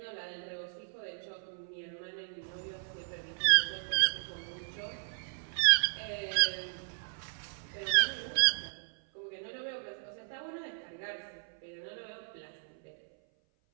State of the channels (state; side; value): silent; left; 55 dB below the other